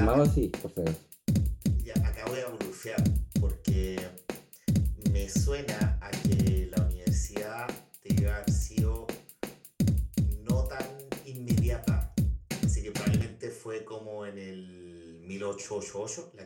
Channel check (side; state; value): both; identical; correlation 1.00